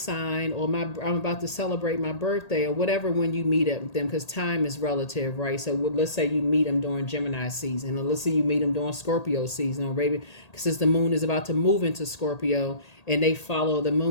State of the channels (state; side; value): late; right; 1.8 ms